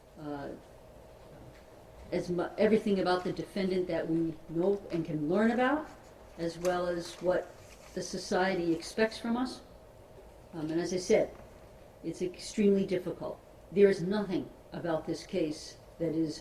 everything about the defendant that we know and can learn about, as well as what the society expects from us. And as I said, it's extremely difficult. There is nothing about this case that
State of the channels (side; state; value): both; identical; correlation 1.00